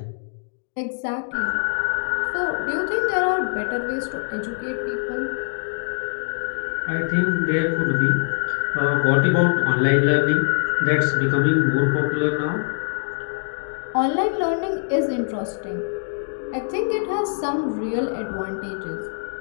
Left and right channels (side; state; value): right; silent; digital silence